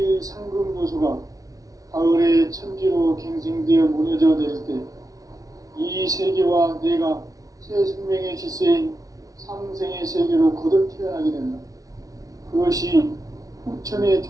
상금 요소가 가을의 천지로 갱생되어 무너져 내릴 때 이 세계와 내가 새 생명의 질서인 상생의 세계로 거듭 태어나게 된다. 그것이 후천의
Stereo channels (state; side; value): late; left; 0.17 ms